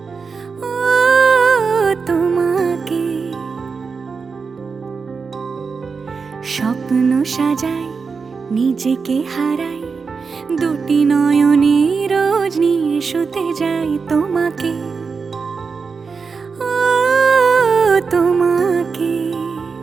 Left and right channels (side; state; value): left; quieter; 5.1 dB